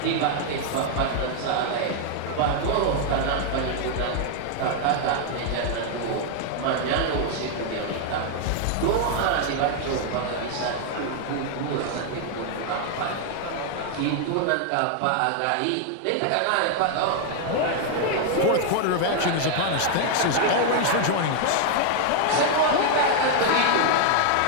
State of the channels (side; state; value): both; different; correlation 0.00